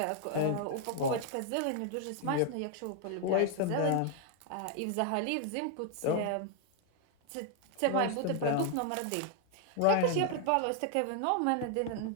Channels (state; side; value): different; both; correlation 0.00